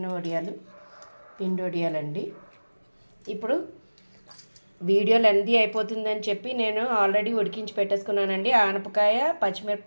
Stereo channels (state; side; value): inverted; both; correlation -1.00